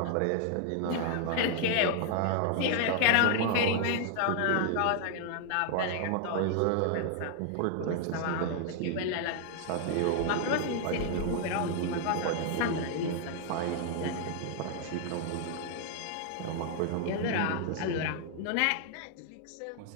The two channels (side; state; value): both; different; correlation 0.00